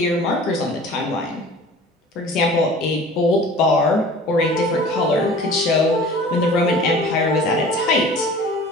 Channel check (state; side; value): normal; both; correlation 0.44